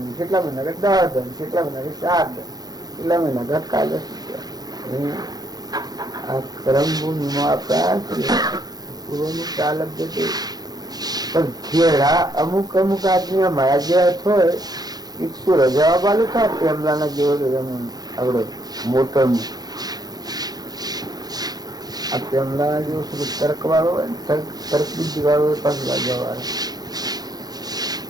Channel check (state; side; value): late; left; 0.19 ms